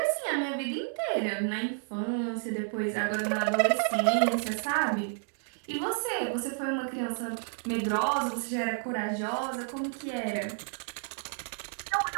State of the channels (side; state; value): left; silent; 57 dB below the other